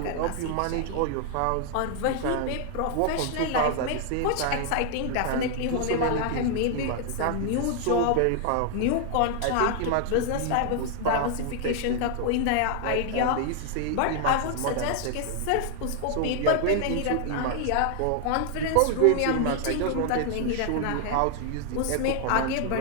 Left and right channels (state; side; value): different; both; correlation 0.00